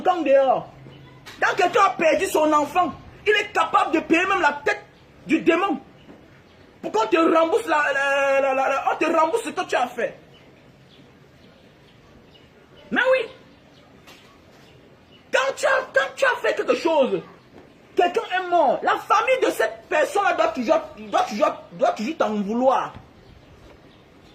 dehors. Quand quelqu'un a perdu son enfant, il est capable de payer même la tête du démon. Pour qu'on te rembourse, on te rembourse ce que tu as fait. Mais oui. Quand tu as fait quelque chose, quelqu'un est mort. La famille de cette personne-là doit toujours t'en vouloir.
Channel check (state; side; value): identical; both; correlation 1.00